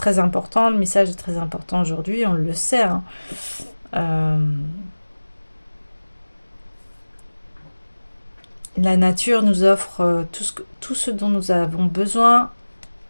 important, le message est très important aujourd'hui, on le sait, hein. Euh, la nature nous offre tout ce dont nous avons besoin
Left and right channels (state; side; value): inverted; both; correlation -1.00